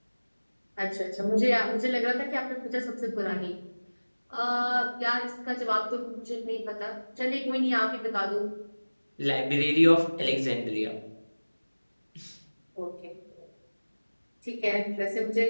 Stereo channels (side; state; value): both; inverted; correlation -1.00